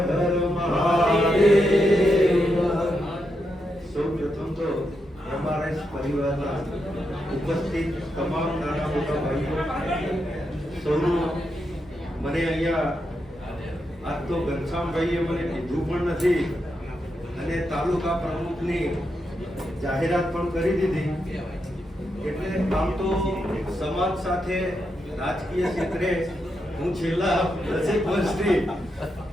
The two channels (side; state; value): both; normal; correlation 0.84